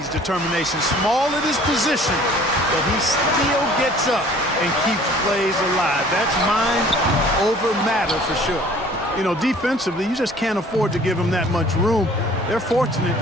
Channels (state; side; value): normal; both; correlation 0.52